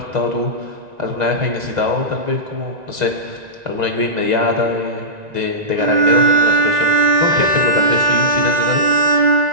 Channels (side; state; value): left; late; 1.9 ms